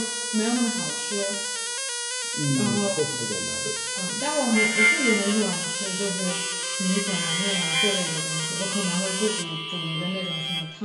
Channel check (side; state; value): both; identical; correlation 1.00